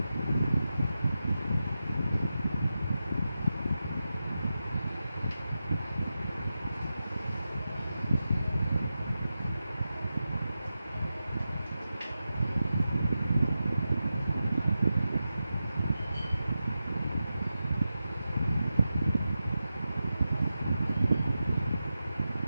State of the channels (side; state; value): both; inverted; correlation -0.91